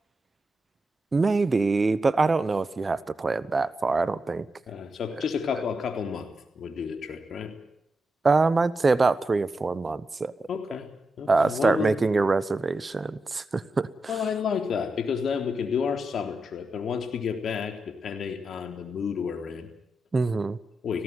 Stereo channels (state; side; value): normal; both; correlation 0.88